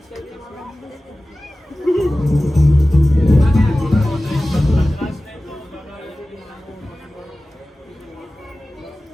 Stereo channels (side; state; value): both; normal; correlation 0.96